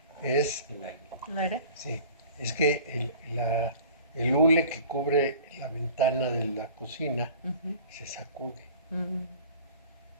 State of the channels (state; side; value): inverted; both; correlation -0.45